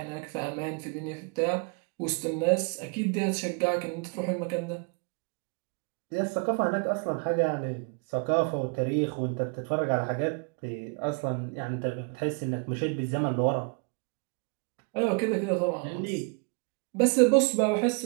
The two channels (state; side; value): quieter; left; 34.6 dB